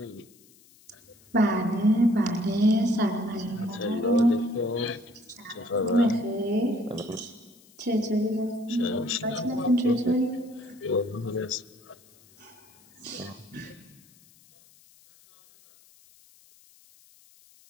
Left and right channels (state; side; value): noise; left; hiss, 28 dB below the sound